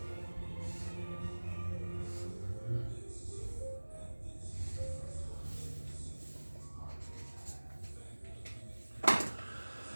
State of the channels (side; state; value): both; inverted; correlation -1.00